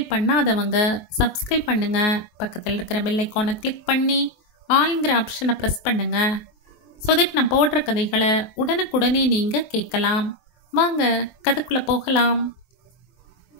பண்ணாதவங்க சப்ஸ்கிரைப் பண்ணுங்க. பக்கத்தில் இருக்கிற பெல் ஐக்கானை கிளிக் பண்ணி ஆல்ங்கிற ஆப்ஷனை ப்ரெஸ் பண்ணுங்க. ஸோ தட் நான் போடுற கதைகளை உடனுக்குடனே நீங்கள் கேட்கலாம். வாங்க கதைக்குள்ளே போகலாம்.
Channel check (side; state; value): right; late; 23 ms